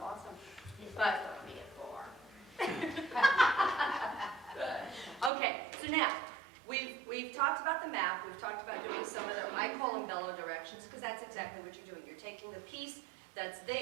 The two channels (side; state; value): left; drops out; at 5.3 s